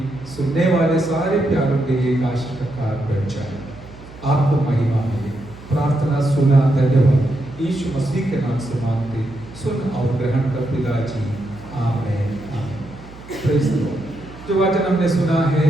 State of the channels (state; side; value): noise; right; hum, 19 dB below the sound